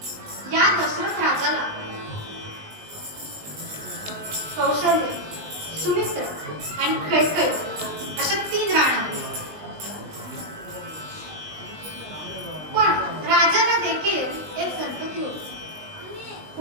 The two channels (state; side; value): late; left; 20 ms